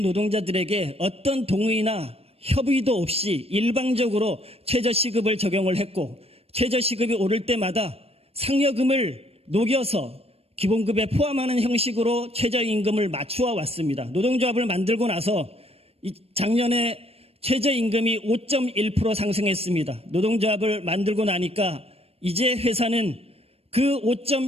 어떤 동의나 협의도 없이 일방적으로 최저시급을 적용을 했고 최저시급이 오를 때마다 상여금을 녹여서 기본급에 포함하는 형식으로 최저임금을 맞추어 왔습니다. 노동조합을 만들고 나서 작년에 최저임금이 5.1% 상승했습니다. 노동조합을 만들고 나니까 이제 회사는 그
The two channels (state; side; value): late; left; 0.29 ms